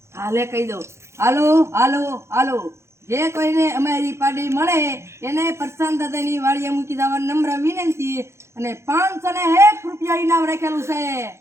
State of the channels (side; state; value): left; late; 0.13 ms